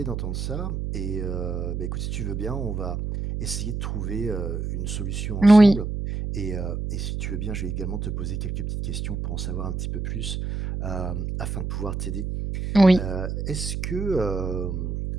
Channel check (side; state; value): right; noise; hum, 3 dB below the sound